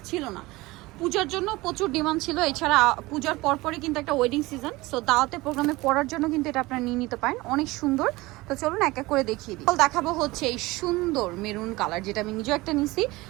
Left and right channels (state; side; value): quieter; left; 20.8 dB